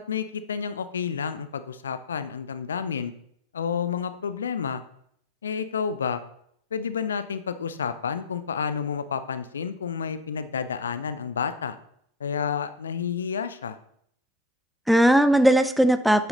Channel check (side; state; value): both; normal; correlation 0.37